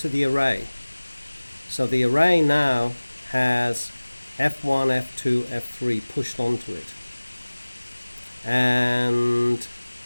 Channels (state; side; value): inverted; both; correlation -1.00